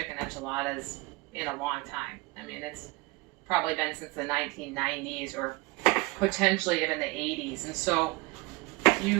enchiladas in a long time. I mean, it's probably been since the 1990s or potentially even the 80s. And so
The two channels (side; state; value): left; quieter; 23.9 dB